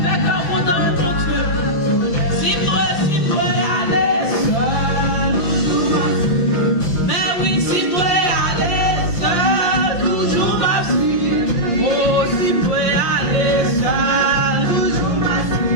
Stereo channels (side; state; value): right; late; 5.9 ms